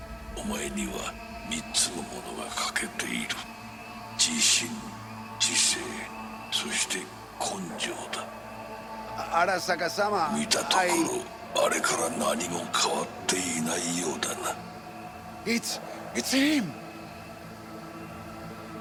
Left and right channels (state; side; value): identical; both; correlation 1.00